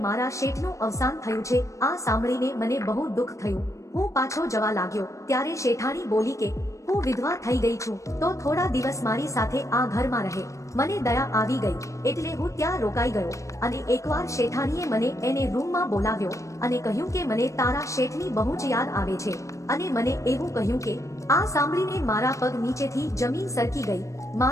મારા શેઠનું અવસાન થયું છે। આ સાંભળીને મને બહુ દુઃખ થયું। હું પાછો જવા લાગ્યો ત્યારે શેઠાણી બોલી કે હું વિધવા થઈ ગઈ છું તો થોડા દિવસ મારી સાથે આ ઘરમાં રહે। મને દયા આવી ગઈ એટલે હું ત્યાં રોકાઈ ગયો અને એકવાર શેઠાણીએ મને એને રૂમમાં બોલાવ્યો અને કહ્યું કે મને તારા શેઠની બહુ જ યાદ આવે છે અને મને એવું કહ્યું કે આ સાંભળીને મારા પગ નીચેથી જમીન સરકી ગઈ।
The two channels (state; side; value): late; right; 0.15 ms